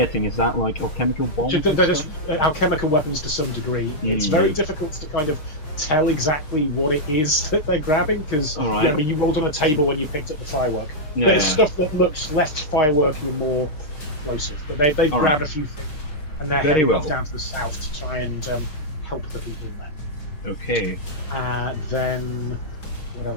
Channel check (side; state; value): right; late; 6.4 ms